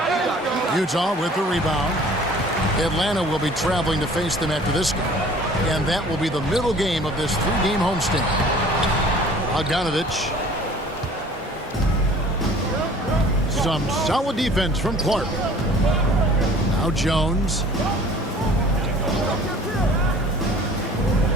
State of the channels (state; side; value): normal; both; correlation 0.49